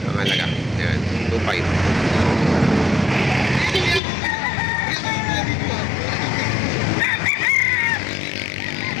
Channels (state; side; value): drops out; right; at 4.0 s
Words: ang halaga. Ayan, 2,500.